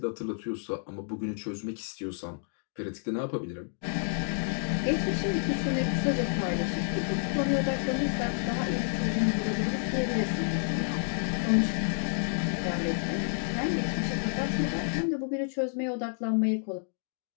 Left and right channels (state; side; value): silent; right; digital silence